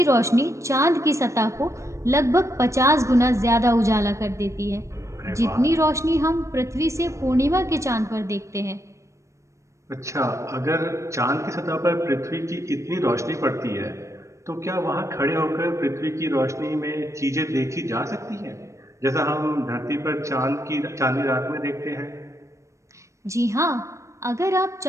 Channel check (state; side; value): late; left; 0.15 ms